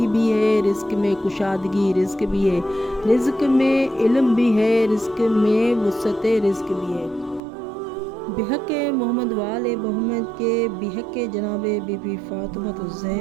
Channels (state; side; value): drops out; left; at 7.4 s